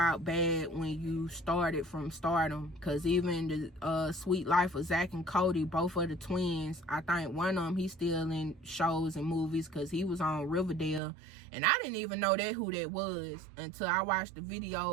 bad when you started from stardom. Because even the Sweet Life of Zach and Cody, both of the twins, I think one of them, he's still in shows and movies because he was on Riverdale. And I didn't even know who that was until I watched the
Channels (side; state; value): left; drops out; at 11.0 s